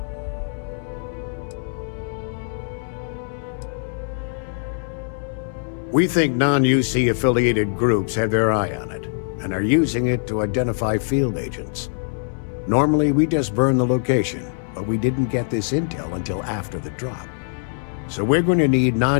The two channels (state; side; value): silent; right; 64 dB below the other